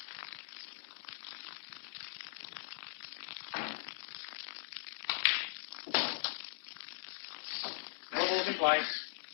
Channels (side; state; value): right; silent; digital silence